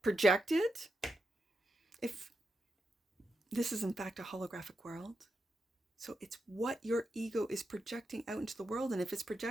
projected. If this is, in fact, a holographic world. So it's what your ego is projecting out into the world. And if it's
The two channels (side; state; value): both; normal; correlation 0.86